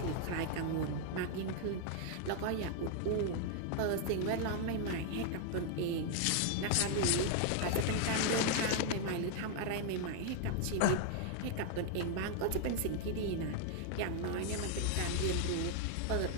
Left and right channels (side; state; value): both; different; correlation 0.00